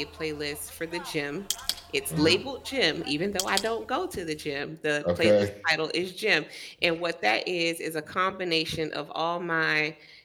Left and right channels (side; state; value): both; identical; correlation 1.00